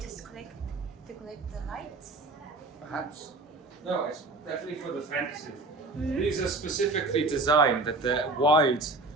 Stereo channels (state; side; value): quieter; left; 3.2 dB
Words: collect the lights. Perhaps. No, it's definitely for the defensive. These are specifically designed that they're wide